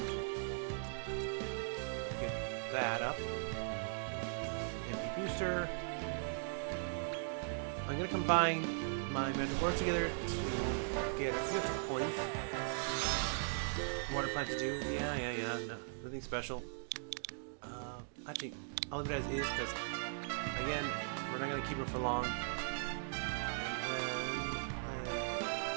I'm going to get that up. An MP Booster. I'm going to combine my Mandragoras together to get a few extra points. What I plan to do, no, nothing special. Actually, I'll leave it as is because, again, we're not going to keep it for long. And then,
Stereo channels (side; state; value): left; silent; digital silence